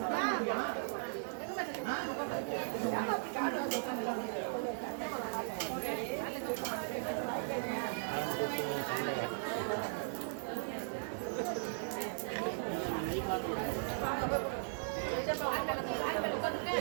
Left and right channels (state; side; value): silent; left; digital silence